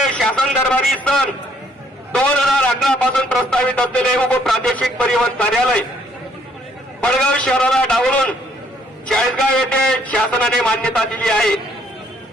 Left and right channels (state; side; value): normal; both; correlation 0.66